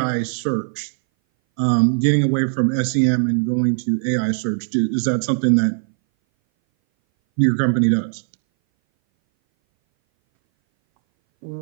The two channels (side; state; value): left; silent; 61 dB below the other